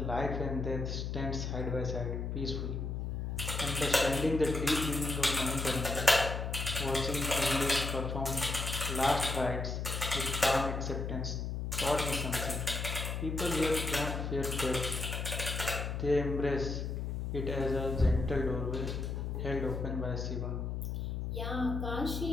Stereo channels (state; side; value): noise; left; hum, 3 dB below the sound